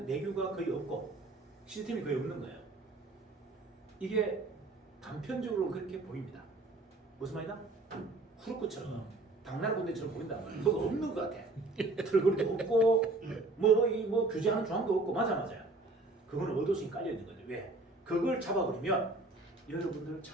내규가 거의 없고 시스템이 거의 없는 거예요. 이게 단편적으로 그렇게 보입니다. 무슨 말이다? 후루꾸처럼 당나라 군대처럼 보인단 말이에요. 뭐가 없는 것 같아. 털거리도 없고 뭐 규제하는 조항도 없고 맞아요. 그거는 의도심이 깔려 있는 거죠. 왜? 그걸 잡아버리면 여러분들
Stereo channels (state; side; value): quieter; left; 3.1 dB